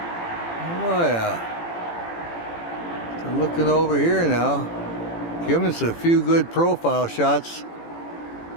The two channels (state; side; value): late; right; 18 ms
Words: yeah. So looking over here now, giving us a few good profile shots.